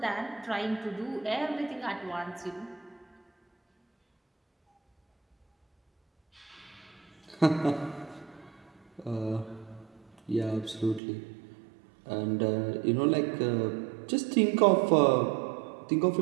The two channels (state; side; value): drops out; left; at 11.0 s